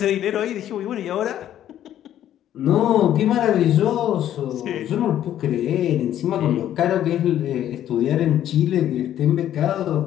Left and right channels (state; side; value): quieter; right; 11.5 dB